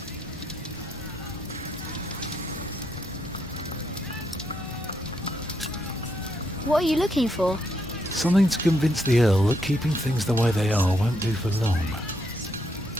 What are you looking for? Something to convince the Earl that keeping things the way they are won't do for long.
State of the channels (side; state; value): both; normal; correlation 0.77